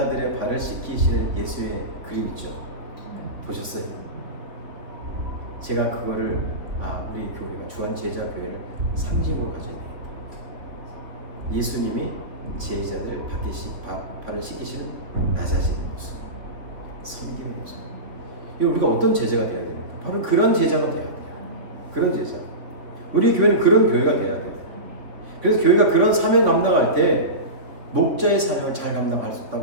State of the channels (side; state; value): left; late; 3.3 ms